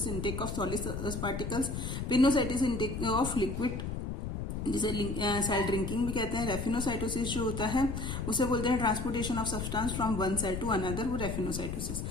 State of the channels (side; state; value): left; noise; rumble, 4 dB below the sound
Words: intake of solid particles, pinocytosis intake of liquid, जिसे सेल ड्रिंकिंग भी कहते हैं। रेफिनोसाइटोसिस जो होता है उसे बोलते हैं transportation of substance from one cell to another, वो रेफिनोसाइटोसिस।